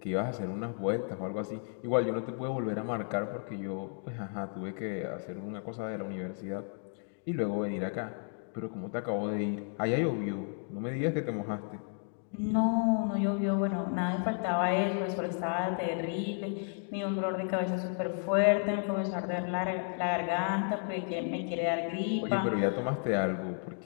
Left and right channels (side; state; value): right; silent; 56 dB below the other